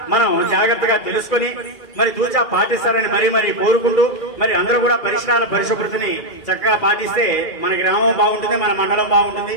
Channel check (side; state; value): right; late; 2.3 ms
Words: మనం జాగ్రత్తగా తెలుసుకుని మరి తూచా పాటిస్తారని మరీ కోరుకుంటూ మరి అందరూ కూడా పరిసరాల పరిశుభ్రతని చక్కగా పాటిస్తే మన గ్రామం బాగుంటుంది, మన మండలం బాగుంటుంది.